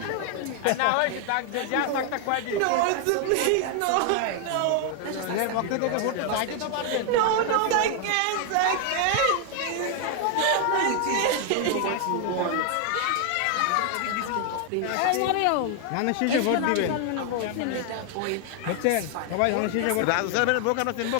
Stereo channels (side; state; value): both; different; correlation 0.00